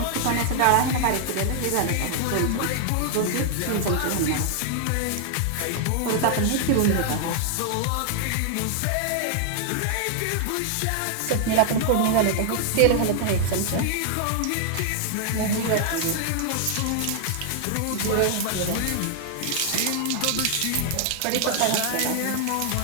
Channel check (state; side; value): different; both; correlation 0.00